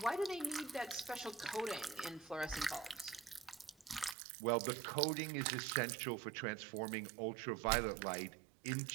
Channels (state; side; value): drops out; left; at 4.2 s